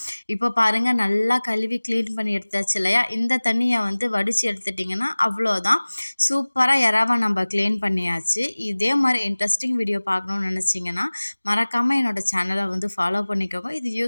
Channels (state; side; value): inverted; both; correlation -1.00